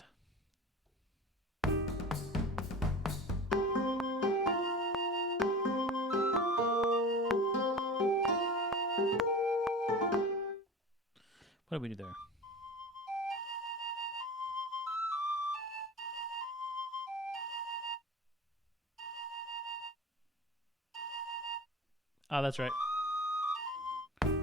What did we do there? Oh, that's right.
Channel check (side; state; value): both; normal; correlation 0.35